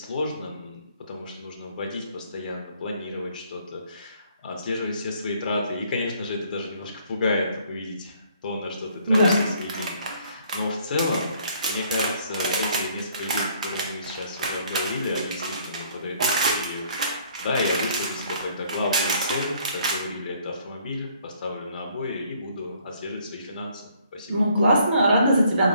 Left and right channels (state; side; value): inverted; both; correlation -0.63